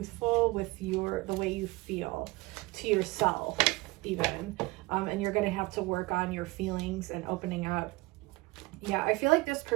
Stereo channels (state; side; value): quieter; left; 22.4 dB